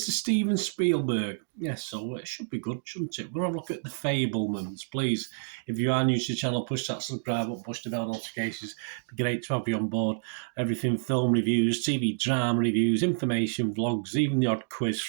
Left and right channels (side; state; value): left; silent; digital silence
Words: Steven Spielberg. Yes, so it should be good, shouldn't it? We're going to have a look at the Fabelmans. Please, if you are new to the channel, push that subscribe button, push the bell notifications. It'd be great to have you on board. Everything film reviews, TV drama reviews, information, vlogs, even the odd quiz